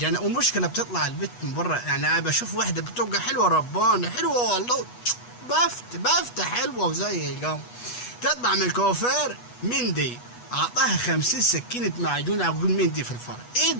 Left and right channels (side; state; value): right; late; 8.2 ms